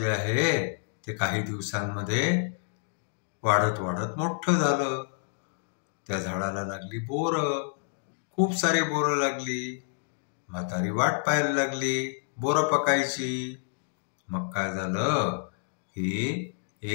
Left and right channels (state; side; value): silent; right; digital silence